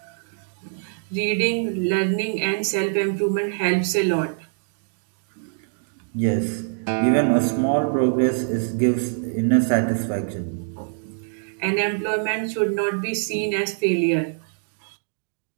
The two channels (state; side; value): silent; left; digital silence